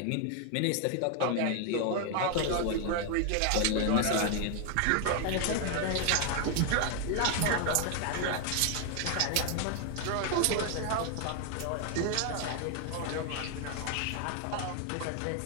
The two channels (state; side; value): different; both; correlation 0.00